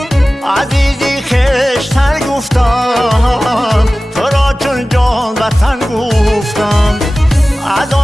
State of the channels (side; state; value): both; normal; correlation 0.97